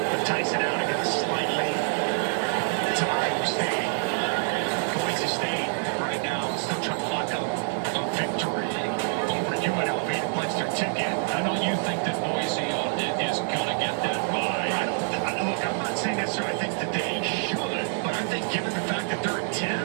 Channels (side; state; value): left; silent; 58 dB below the other